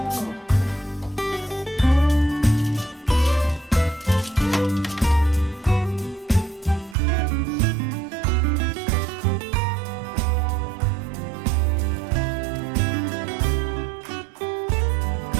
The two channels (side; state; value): left; drops out; at 7.0 s